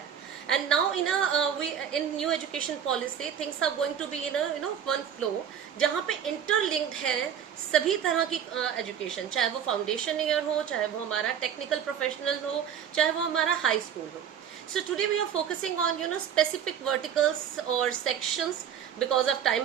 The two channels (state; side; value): quieter; left; 8.6 dB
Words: And now in new education policy things are going to be in one flow, जहाँ पे इंटरलिंक्ड है सभी तरह की एजुकेशन, चाहे वो फाउंडेशन ईयर हो, चाहे वो हमारा टेक्निकल प्रोफेशनल हो, चाहे वो हमारा हाई स्कूल हो. So today we are focusing on specific verticals or sections because of